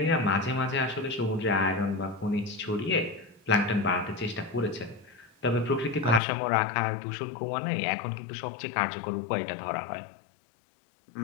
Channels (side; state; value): right; drops out; at 6.2 s